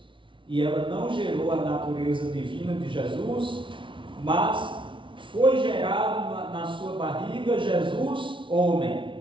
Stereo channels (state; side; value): late; left; 0.25 ms